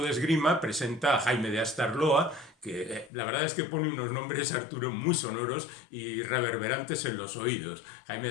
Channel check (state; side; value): drops out; right; at 3.1 s